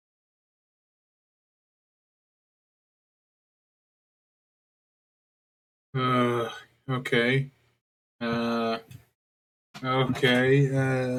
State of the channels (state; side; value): identical; both; correlation 1.00